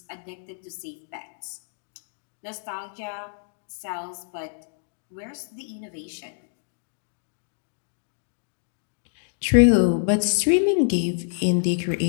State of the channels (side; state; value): right; silent; digital silence